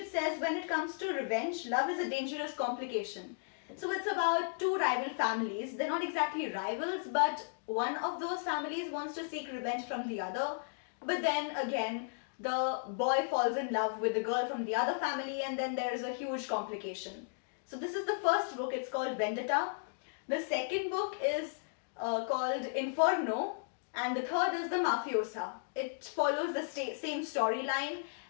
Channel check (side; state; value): right; silent; digital silence